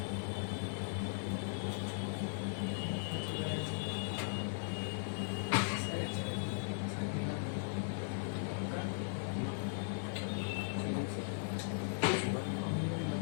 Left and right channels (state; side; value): silent; right; digital silence